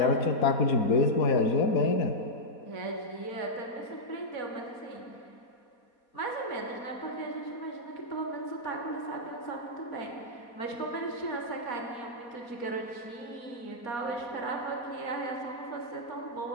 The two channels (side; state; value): right; late; 4.2 ms